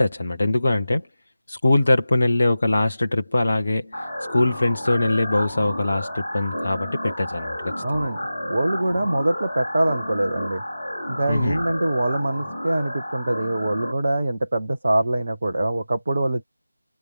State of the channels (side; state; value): both; inverted; correlation -0.94